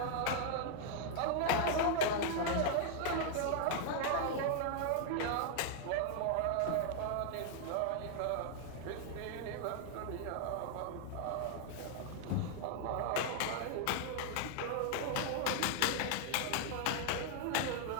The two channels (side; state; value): both; different; correlation 0.00